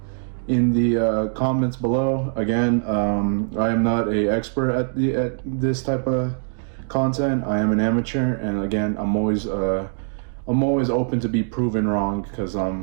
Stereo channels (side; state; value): left; silent; 64 dB below the other